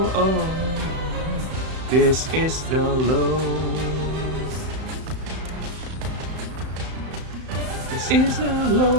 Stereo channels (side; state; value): left; late; 34 ms